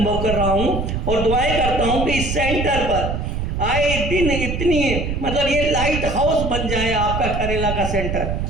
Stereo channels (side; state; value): right; noise; rumble, 3 dB below the sound